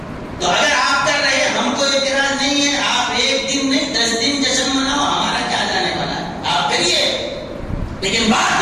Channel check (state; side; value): identical; both; correlation 1.00